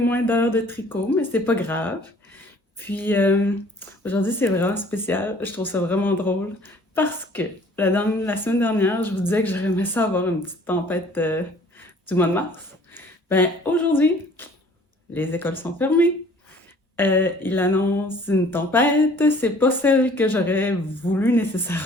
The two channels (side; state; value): both; normal; correlation 0.53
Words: d'heures de tricot, mais c'est pas grave. Puis aujourd'hui, c'est vraiment spécial. Je trouve ça vraiment drôle parce que la semaine dernière, je vous disais que j'aurais aimé ça avoir une petite tempête du mois de mars. Ben aujourd'hui, les écoles sont fermées. Il annonce une tempête. C'est pas celle que j'aurais voulu